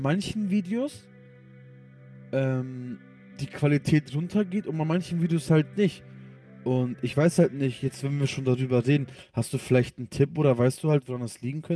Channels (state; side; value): identical; both; correlation 1.00